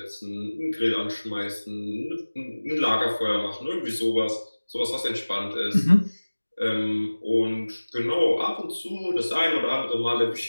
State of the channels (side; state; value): both; inverted; correlation -1.00